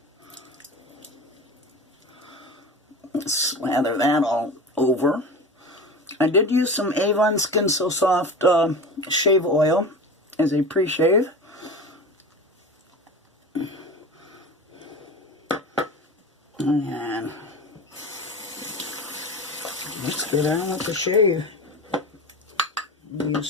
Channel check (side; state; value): both; normal; correlation 0.30